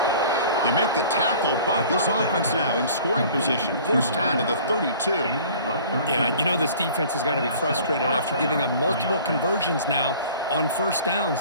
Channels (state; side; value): inverted; both; correlation -0.48